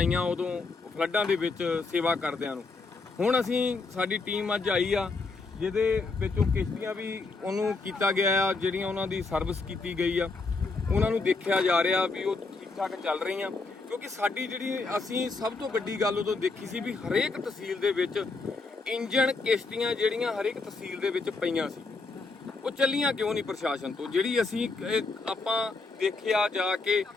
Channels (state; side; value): quieter; right; 3.8 dB